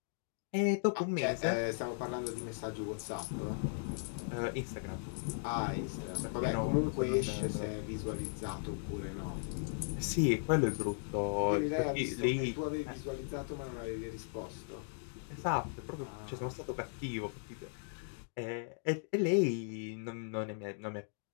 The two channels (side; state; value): right; silent; digital silence